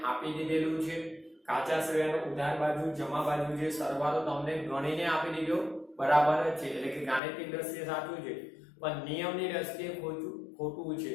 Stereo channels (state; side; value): drops out; right; at 7.2 s